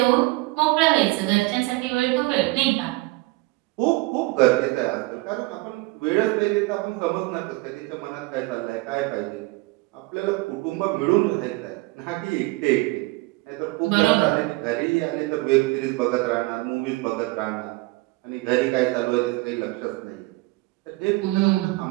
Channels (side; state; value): left; quieter; 22.3 dB